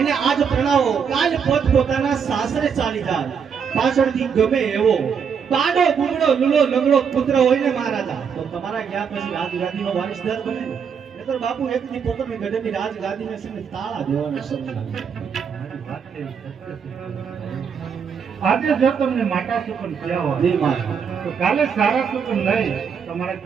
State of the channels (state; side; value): quieter; left; 6.8 dB